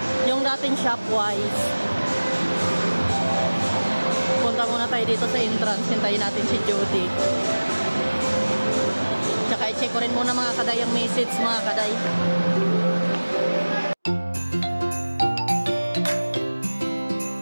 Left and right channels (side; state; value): both; inverted; correlation -1.00